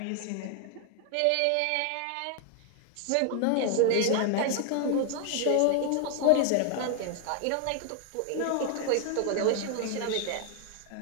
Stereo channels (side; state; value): both; different; correlation 0.00